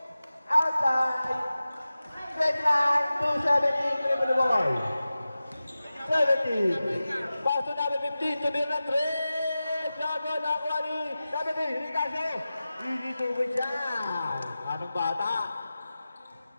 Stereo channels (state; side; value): inverted; both; correlation -0.95